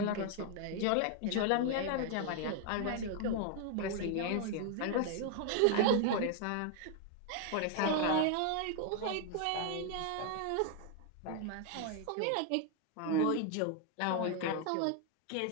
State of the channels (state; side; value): different; both; correlation 0.00